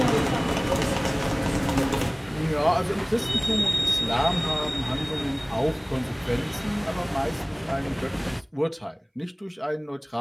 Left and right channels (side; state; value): both; identical; correlation 1.00